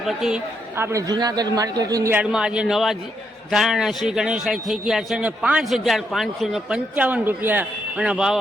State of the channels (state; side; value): normal; both; correlation 0.78